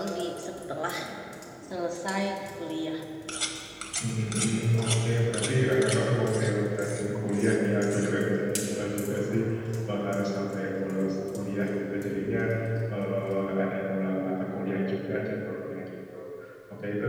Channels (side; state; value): both; identical; correlation 1.00